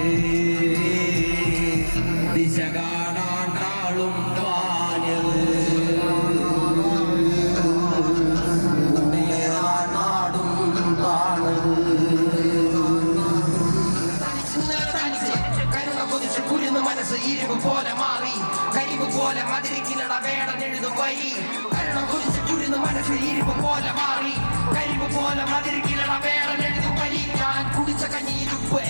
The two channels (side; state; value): both; inverted; correlation -1.00